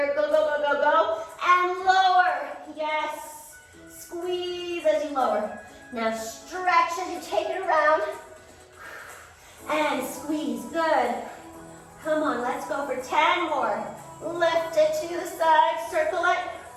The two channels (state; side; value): identical; both; correlation 1.00